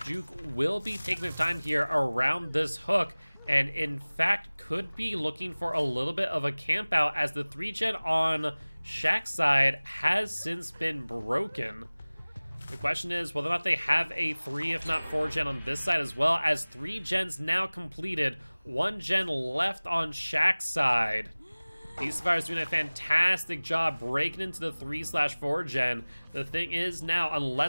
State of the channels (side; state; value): both; inverted; correlation -1.00